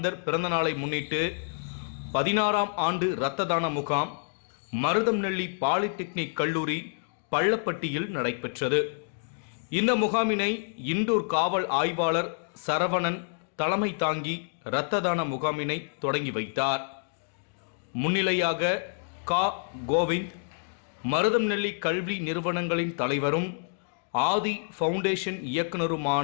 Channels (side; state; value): right; silent; digital silence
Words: பிறந்தநாளை முன்னிட்டு 16ஆம் ஆண்டு இரத்த தான முகாம் மருதம்நெல்லி பாலிடெக்னிக் கல்லூரி பள்ளப்பட்டியில் நடைபெற்றது. இந்த முகாமினை இண்டூர் காவல் ஆய்வாளர் சரவணன் தலைமை தாங்கி இரத்த தான முகாமினை தொடங்கி வைத்தார். முன்னிலையாக கோவிந்த், மருதம்நெல்லி கல்வி நிறுவனங்களின் தலைவரும் ஆதி ஃபவுண்டேஷன்